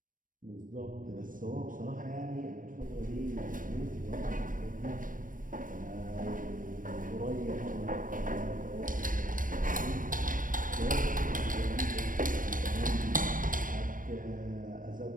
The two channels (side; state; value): left; late; 0.39 ms